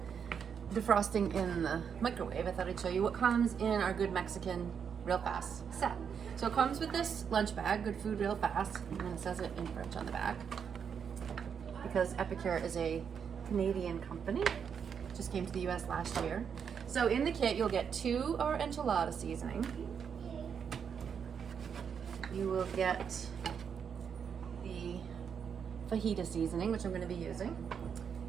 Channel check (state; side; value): quieter; left; 7.1 dB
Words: defrosting in the microwave, I thought I'd show you what comes in our Good Mexican Real Fast set. So it comes with this lunch bag, Good Food Real Fast, and it says it in French on the back because Epicure is a Canadian company. Just came to the US last year. So in the kit you'll get 2 our enchilada seasoning. You will get the fajita seasoning, which I'm going to be using